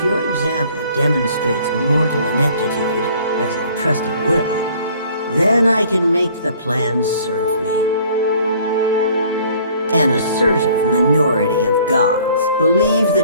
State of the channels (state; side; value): inverted; both; correlation -0.55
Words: your example demonstrates mortal ineptitude, as I trust it will, then I can make the plans serve me. An assertive minority of gods believe